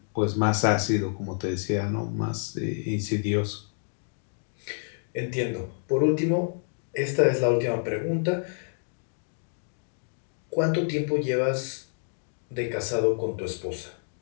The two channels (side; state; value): right; silent; digital silence